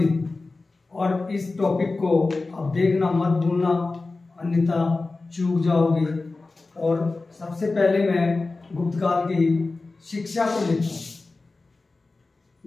और इस टॉपिक को आप देखना मत भूलना, अन्यथा चूक जाओगे। और सबसे पहले मैं गुप्त काल की शिक्षा को लेता हूँ।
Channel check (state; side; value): quieter; right; 3.5 dB